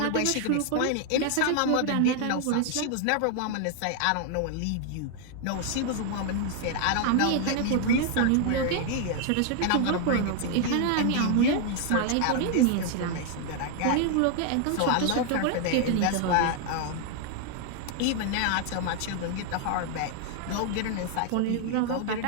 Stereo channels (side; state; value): both; different; correlation 0.00